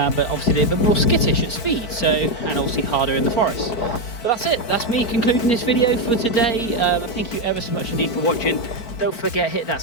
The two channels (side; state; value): right; late; 4.5 ms